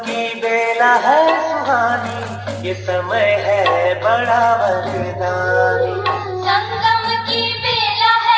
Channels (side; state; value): both; identical; correlation 1.00